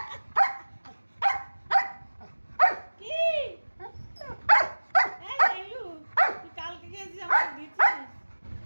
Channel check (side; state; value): both; inverted; correlation -1.00